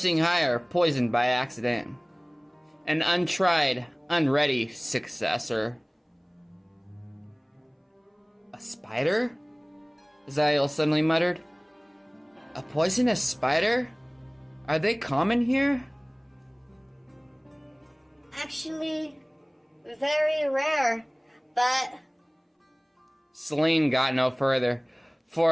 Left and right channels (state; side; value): identical; both; correlation 1.00